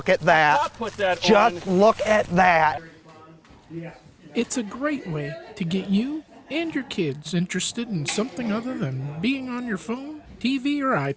at that? Just look at that. It's a great way to get you and your kids interested in something other than being on your phone, TV, or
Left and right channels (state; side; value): identical; both; correlation 1.00